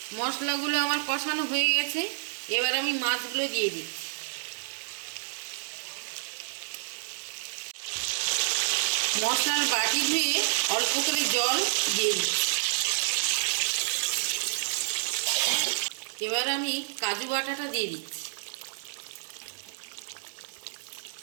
মশলাগুলো আমার কষানো হয়ে গেছে, এবার আমি মাছগুলো দিয়ে দিচ্ছি। মশলার বাটি ধুয়ে অল্প করে জল দিয়ে দিচ্ছি। এবার আমি কাজু বাটাটা দিয়ে দিচ্ছি।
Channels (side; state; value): left; silent; digital silence